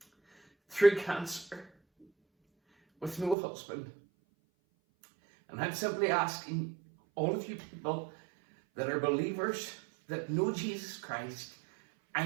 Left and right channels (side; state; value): left; drops out; at 3.4 s